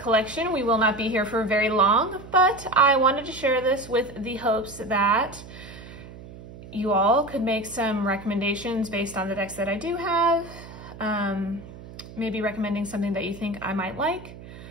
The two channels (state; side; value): noise; right; hum, 16 dB below the sound